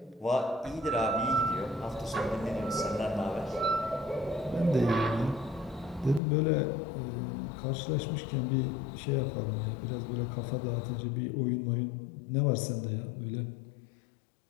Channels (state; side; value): drops out; right; at 6.2 s